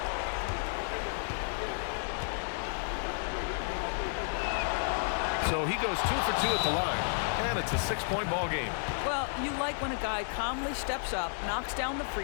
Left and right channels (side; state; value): right; silent; digital silence